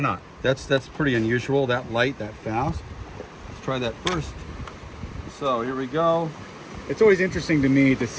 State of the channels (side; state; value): both; identical; correlation 1.00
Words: That's pretty unusual, that light, that fast. Let's try that first. So here we go. It's always interesting to me to